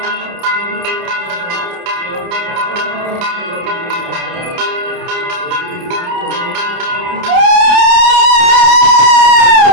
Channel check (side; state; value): left; late; 29 ms